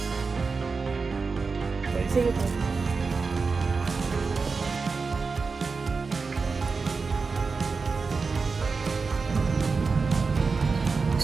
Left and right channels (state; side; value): quieter; left; 4.6 dB